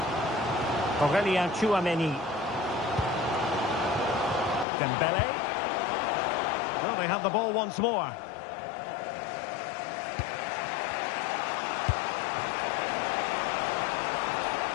Aurelien Tchouameni. Dembele. Well, they have the ball once more.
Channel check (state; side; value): drops out; right; at 4.7 s